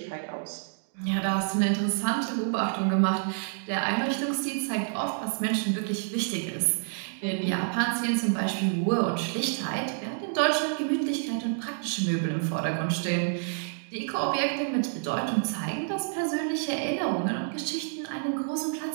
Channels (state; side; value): silent; left; digital silence